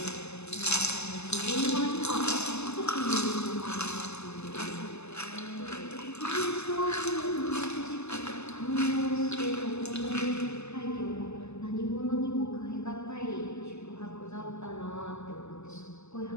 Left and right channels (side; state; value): right; late; 0.80 ms